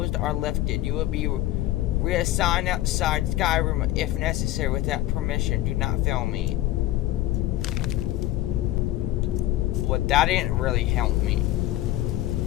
or lifted. You will be Reassign outside Skyrim if necessary without permission. Do not fail me. Well, that didn't really help me.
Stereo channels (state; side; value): quieter; right; 15.2 dB